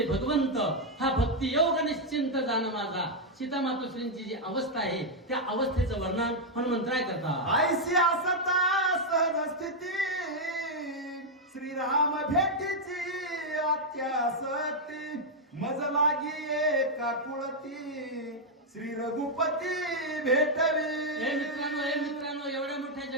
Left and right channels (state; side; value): normal; both; correlation -0.01